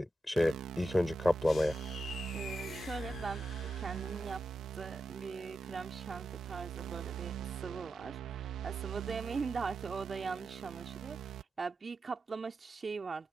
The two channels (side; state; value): both; normal; correlation 0.88